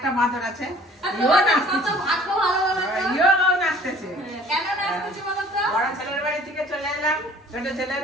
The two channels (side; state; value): both; normal; correlation 0.51